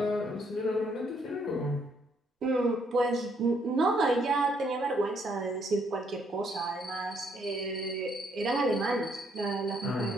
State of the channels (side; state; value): both; normal; correlation 0.71